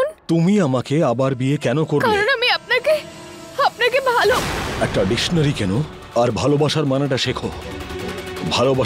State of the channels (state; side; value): identical; both; correlation 1.00